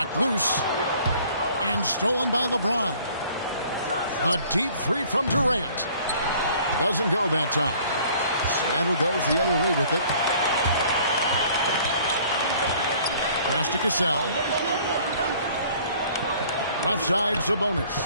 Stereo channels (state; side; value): inverted; both; correlation -0.54